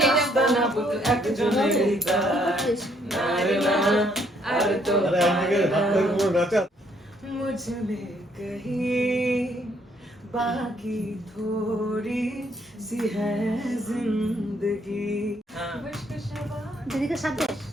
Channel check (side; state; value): both; normal; correlation 0.68